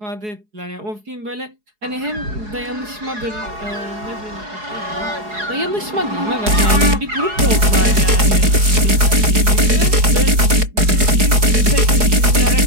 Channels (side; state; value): left; late; 4.7 ms